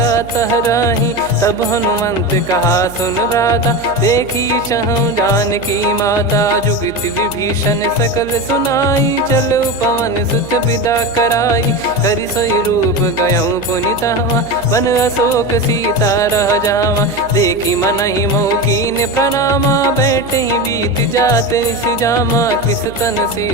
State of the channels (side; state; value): right; noise; hum, 17 dB below the sound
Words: तहराही। तब हनुमंत कहा सुन भ्राता, देखी चहु जानकी माता। जुगित विभीषण सकल सुनाई, चलो पवन सुत विदा कराई। करि सोई रूप गयऊँ पुनितवा, बन अशोक सीता रह जावा। देखी मनहि मोह कीन्ह प्रणामा, बैठे ही बीत जात निस जामा। कृस तन